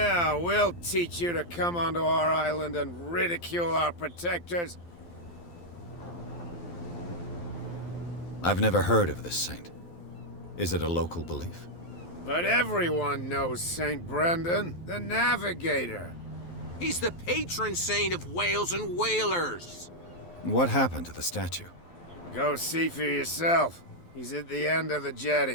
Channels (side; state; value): right; late; 12 ms